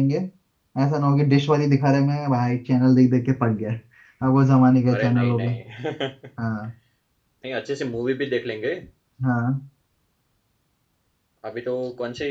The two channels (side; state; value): both; identical; correlation 1.00